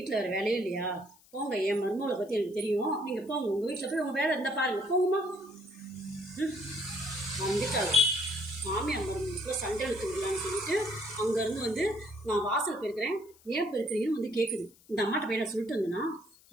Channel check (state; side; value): noise; left; hiss, 27 dB below the sound